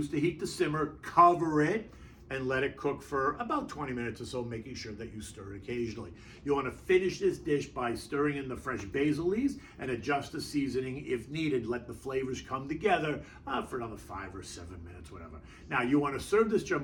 the heat to simmer, cover it, and let it cook for about 20 minutes or so, making sure that you stir it occasionally. You wanna finish this dish by stirring in the fresh basil leaves and adjust the seasoning if needed. Let the flavors come together for another 5 or 7 minutes, whatever. Now, you wanna serve this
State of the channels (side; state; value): both; identical; correlation 1.00